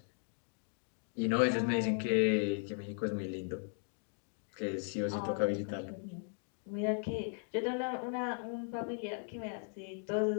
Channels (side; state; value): right; silent; 53 dB below the other